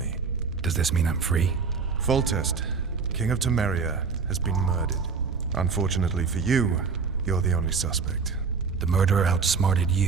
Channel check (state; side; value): quieter; left; 5.3 dB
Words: Does this mean I'm free? Foltest, King of Temeria, has been murdered. Unfortunately for you, you're the only suspect. The murderer outsmarted